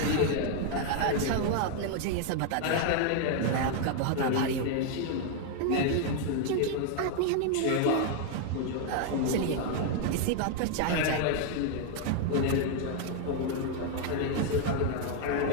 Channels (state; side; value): different; both; correlation 0.00